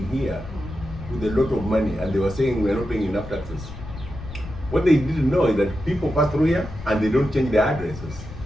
here with a lot of money, and they were saying we're not paying enough taxes. What they didn't know is that people pass through here and they don't change their addresses.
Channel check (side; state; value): left; noise; rumble, 12 dB below the sound